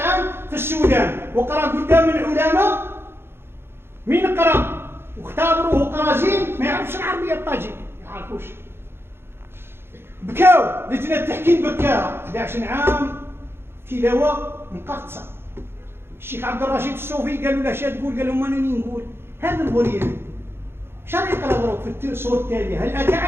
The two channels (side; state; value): left; late; 0.11 ms